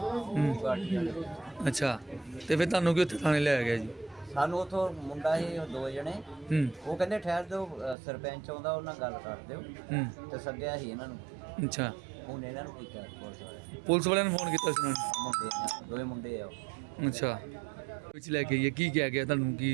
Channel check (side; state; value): left; drops out; at 8.0 s